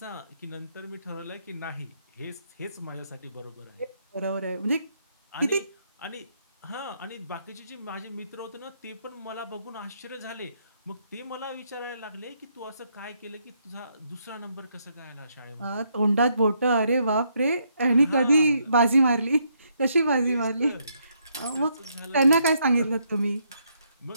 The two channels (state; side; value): inverted; both; correlation -0.74